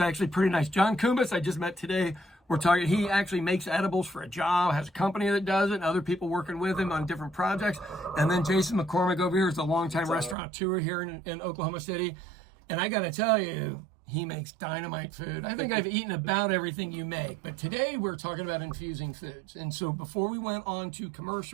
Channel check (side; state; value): left; drops out; at 10.4 s